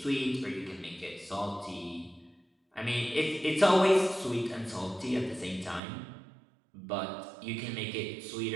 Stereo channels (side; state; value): left; drops out; at 5.8 s